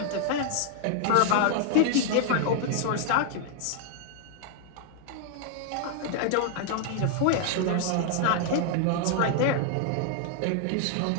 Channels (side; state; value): both; different; correlation 0.00